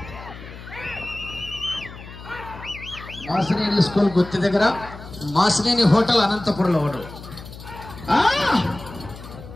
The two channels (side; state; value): left; noise; hum, 15 dB below the sound